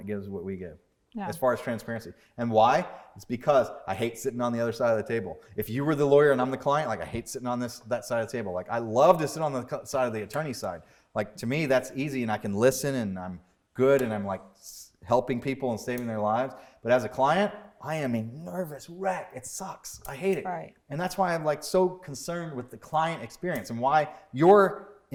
gives what we give. Yeah. As far as transparency. And why? It's because I hate sitting on the other side of the table. If you were the lawyer and I'm the client, like I hate sitting on that side of the table. Like I love to sit on the side of the attorney side. Like to me, that's easy and I can listen and I'm good and I'm like helping people and saving their lives. But as a client, I am a nervous wreck. It sucks. I hate it. Right. And that's why I'm like so concerned with the client experience and why you're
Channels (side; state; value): both; identical; correlation 1.00